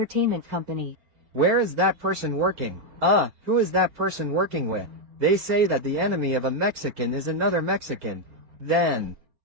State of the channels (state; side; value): late; left; 6.4 ms